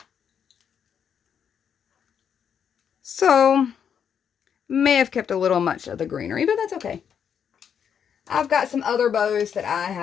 So, may have kept a little much of the greenery, but that's okay. I've got some other bows that I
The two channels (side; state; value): right; quieter; 7.9 dB